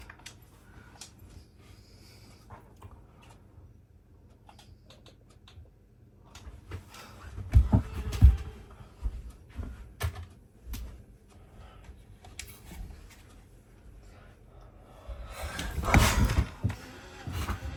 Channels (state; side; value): identical; both; correlation 1.00